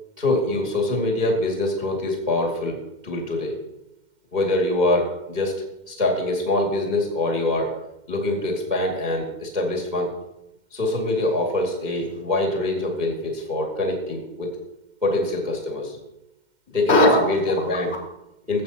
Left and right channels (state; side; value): late; left; 2.1 ms